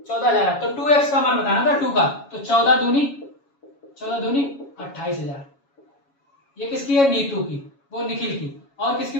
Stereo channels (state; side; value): late; right; 7.2 ms